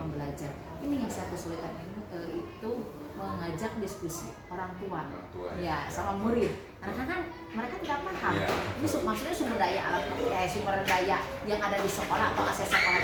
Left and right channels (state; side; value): identical; both; correlation 1.00